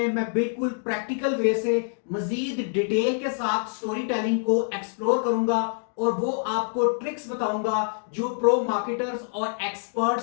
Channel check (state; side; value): silent; right; 61 dB below the other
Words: मैं बिल्कुल प्रैक्टिकल वे से मजीद डिटेल के साथ स्टोरी टेलिंग को एक्सप्लोर करूंगा और वो आपको ट्रिक्स बताऊंगा जो प्रो मार्केटर्स और